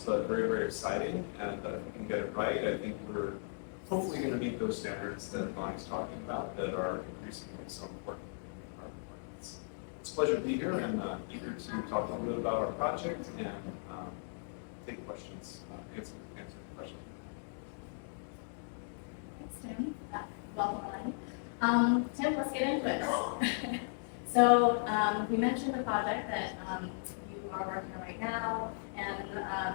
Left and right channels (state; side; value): silent; right; digital silence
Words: but very, very exciting. And if we can get it right, I think we're hopefully going to meet those standards that Bonnie's talking about that are increasingly so important in carbon markets. It's a pleasure to be here and eager to talk a little bit about our project and take questions, answer questions. Thanks, Tim. Welcome, Elaine. Tim, let's get into it. So we mentioned the project that you are working on right now,